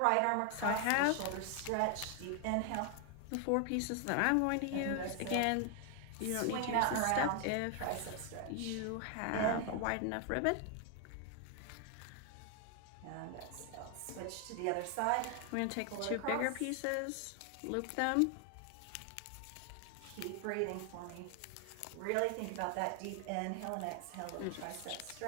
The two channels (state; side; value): different; both; correlation 0.00